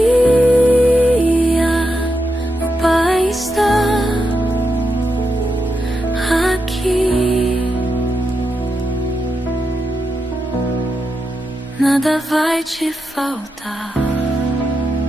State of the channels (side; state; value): both; normal; correlation 0.86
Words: O Pai está aqui. Nada vai te faltar.